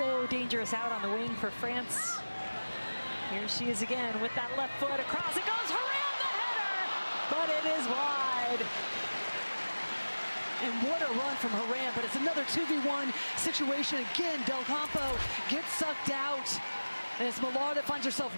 dangerous out on the wing for France. Here she is again with that left foot across. It goes, Haran the header, but it is wide. And what a run from Haran, but it's another 2v1 situation. Again, Del Campo gets sucked out. And it's Millar that finds herself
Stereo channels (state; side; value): inverted; both; correlation -1.00